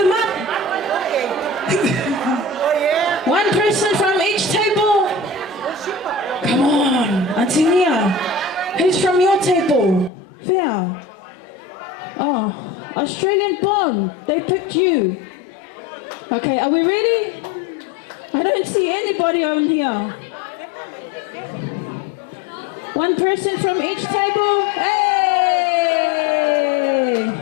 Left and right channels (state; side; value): drops out; right; at 10.1 s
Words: up. One person from each table. Come on, Antonia. Who's from your table? Fair. Oh, Australian born. They picked you. Okay, are we ready? I don't see anybody on here. One person from each table. Hey!